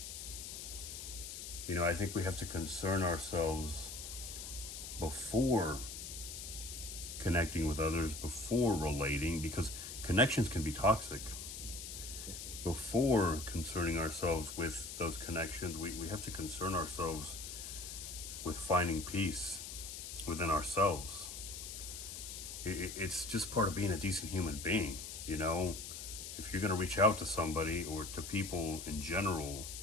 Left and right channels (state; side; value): noise; left; hiss, 8 dB below the sound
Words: know, I think we have to concern ourselves before connecting with others, before relating, because connections can be toxic. Before concerning ourselves with those connections, we have to concern ourselves with finding peace within ourselves. It's just part of being a decent human being, you know? If you're going to reach out to somebody or to people in general,